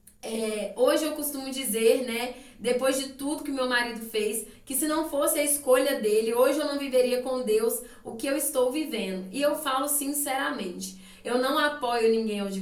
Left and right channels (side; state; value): both; identical; correlation 1.00